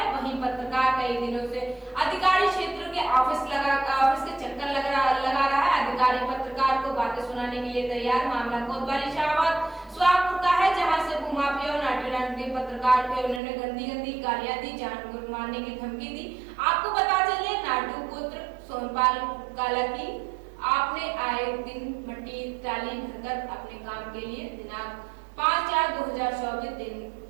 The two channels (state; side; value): drops out; left; at 13.4 s